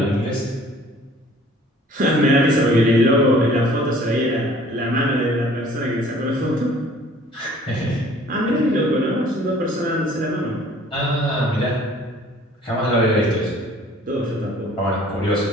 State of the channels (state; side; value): normal; both; correlation 0.53